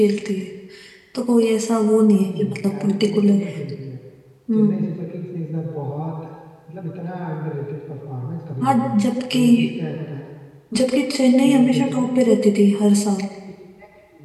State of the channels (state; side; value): identical; both; correlation 1.00